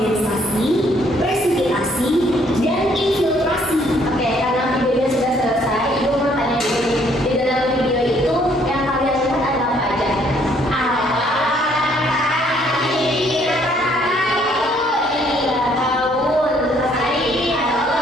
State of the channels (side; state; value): both; normal; correlation 0.65